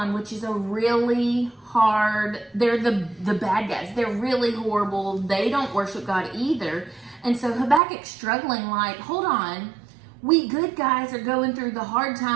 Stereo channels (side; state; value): left; drops out; at 7.8 s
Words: which is a really hard, they're the bad guys. They're really horrible. They don't worship God either. And so Habakkuk's struggling like, hold on, we good guys are going through the hard